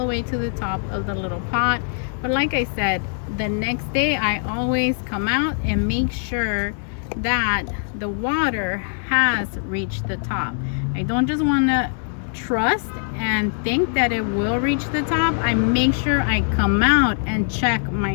way to the top of the little pot. But like I said, the next day I always come out and make sure that the water has reached the top. I don't just want to trust and think that it will reach the top. I make sure I come out and check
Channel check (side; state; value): right; silent; 64 dB below the other